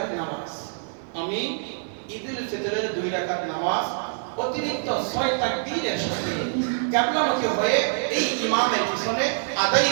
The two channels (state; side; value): silent; left; 58 dB below the other